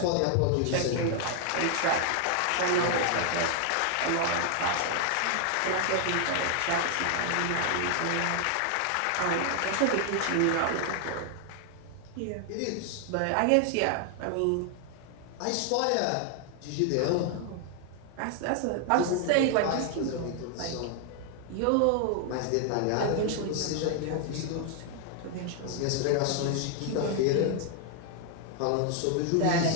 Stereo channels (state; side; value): different; both; correlation 0.00